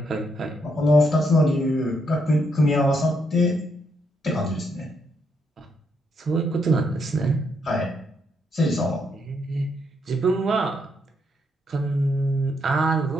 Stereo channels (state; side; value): normal; both; correlation 0.77